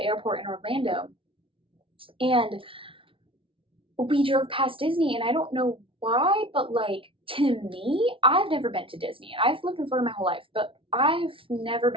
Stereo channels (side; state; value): left; late; 0.25 ms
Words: in Orlando, and we drove past Disney, and I don't know why, but, like, to me, I've never been to Disney. I've lived in Florida my whole life, but I've never